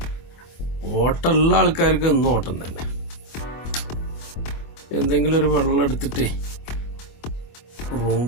ഓട്ടമുള്ള ആൾക്കാർക്ക് എന്നും ഓട്ടം തന്നെ. എന്തെങ്കിലും ഒരു വെള്ളം എടുത്തിട്ടേ റൂം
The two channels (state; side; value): late; right; 25 ms